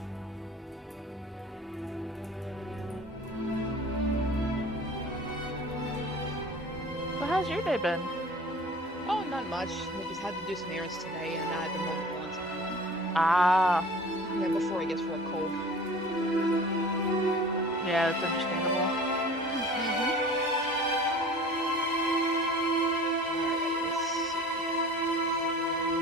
Well, how's your day been? Oh, not much. I just had to do some errands today, and I had to mow the lawns. Ah, Yeah, before it gets real cold. yeah, that's understandable. Alright, let's see.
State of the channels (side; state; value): both; normal; correlation 0.43